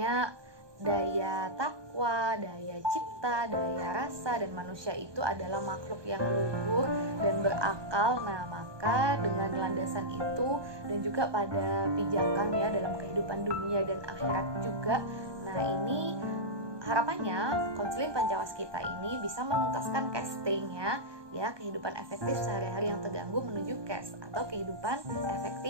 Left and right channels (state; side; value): late; left; 1.2 ms